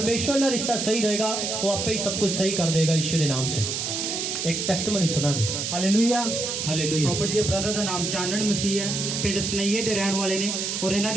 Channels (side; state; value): right; noise; hiss, 2 dB below the sound